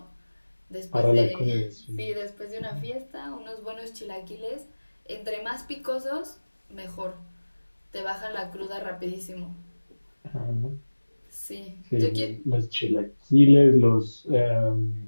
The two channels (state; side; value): inverted; both; correlation -1.00